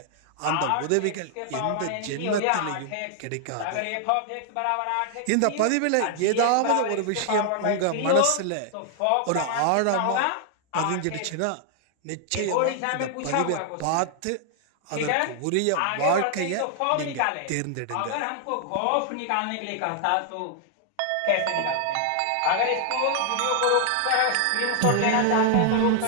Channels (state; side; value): different; both; correlation 0.00